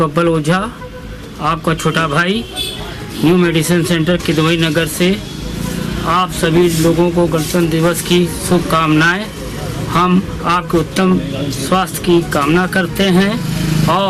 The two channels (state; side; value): identical; both; correlation 1.00